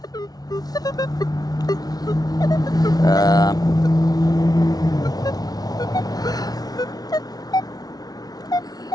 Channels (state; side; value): late; right; 0.19 ms